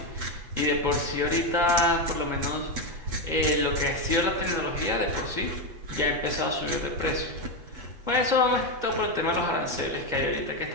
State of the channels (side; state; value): left; late; 8.1 ms